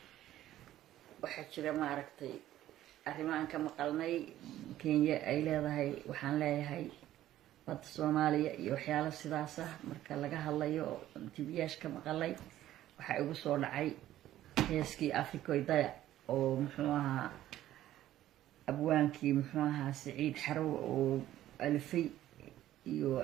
waxaa jira maaragtay arrimahan ka maqalnay Kenya ay leedahay waxaan leeyahay badda Soomaaliya iyo waxyaalo sidaas ah marka laga hadlayo TVyash ka maqalay waxa igu soo dhacay heeskii Afrikoydaya oo muxuu ahaa abwaankii muxuu ahaa Saciid Xarow oo alfay iyo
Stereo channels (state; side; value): quieter; left; 13.4 dB